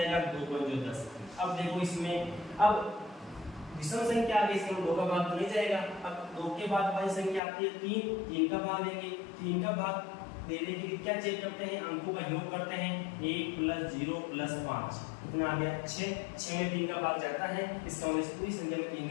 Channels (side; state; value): right; drops out; at 7.4 s